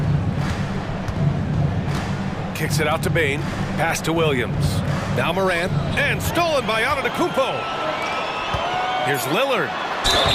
Kicks it out to Bane. Pass to Williams. Now Morant. And stolen by Antetokounmpo. Here's Lillard.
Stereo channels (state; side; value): identical; both; correlation 1.00